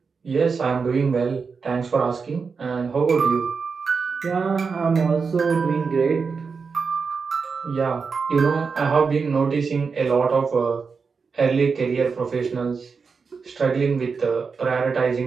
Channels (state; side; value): quieter; left; 5.2 dB